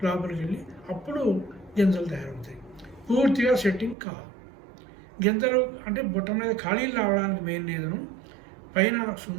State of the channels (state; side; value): drops out; left; at 4.0 s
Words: లోపలికి వెళ్ళి అప్పుడు గింజలు తయారవుతాయి. పూర్తిగా సెట్టింగ్ కాదు. గింజలు అంటే బుట్ట మీద ఖాళీలు రావడానికి మెయిన్ రీజను పైన